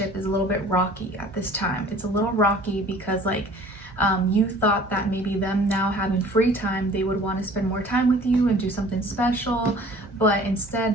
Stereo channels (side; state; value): both; normal; correlation 0.49